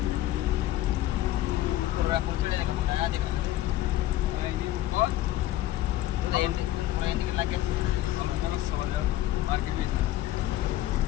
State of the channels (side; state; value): right; quieter; 14.6 dB